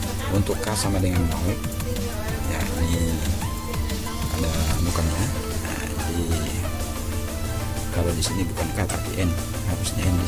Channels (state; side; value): identical; both; correlation 1.00